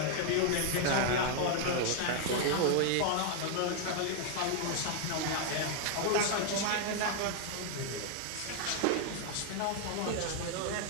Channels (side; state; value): both; different; correlation 0.00